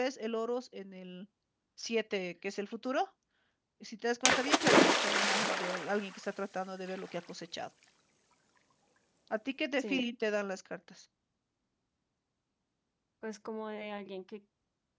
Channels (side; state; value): both; identical; correlation 1.00